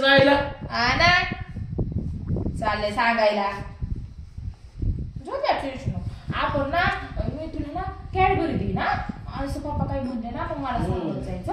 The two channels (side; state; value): both; identical; correlation 1.00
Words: जायला. हा ना. चाललंय सांगायला. झोप्या ट्युशन आपण ना मी तुला ना कॅडबरी दिली ना असं पप्पा काही म्हणले ना मग मला सांगत जायचं